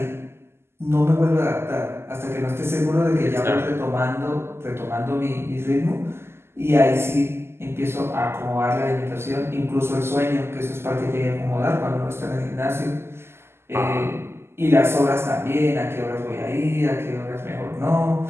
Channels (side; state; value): left; late; 0.12 ms